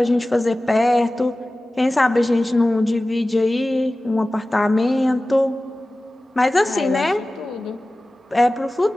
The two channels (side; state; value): both; normal; correlation 0.97